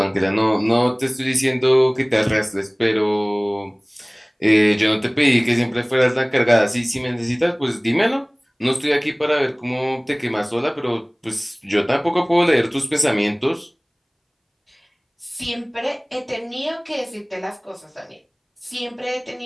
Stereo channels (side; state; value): both; identical; correlation 1.00